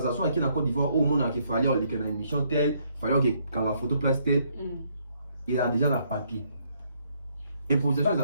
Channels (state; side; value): inverted; both; correlation -0.70